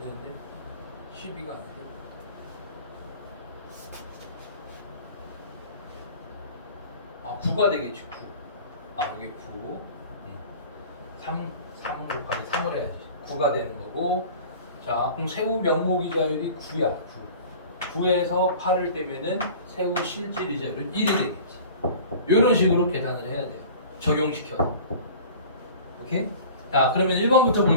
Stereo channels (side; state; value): both; inverted; correlation -0.42